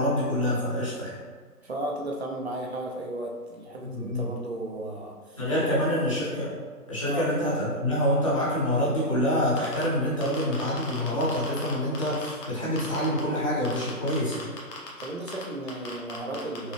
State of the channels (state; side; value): normal; both; correlation -0.02